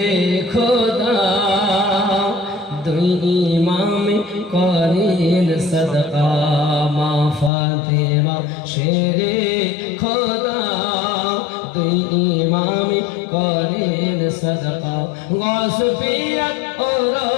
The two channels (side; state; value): right; drops out; at 7.5 s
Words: খোদা দুই ইমামে করেন সদকা মা ফাতেমা শেরে খোদা দুই ইমামে করেন সদকা গস পিয়াত